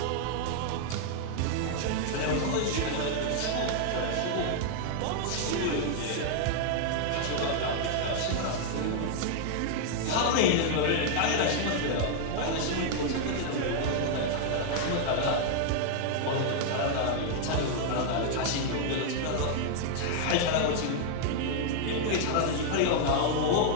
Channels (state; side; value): different; both; correlation 0.00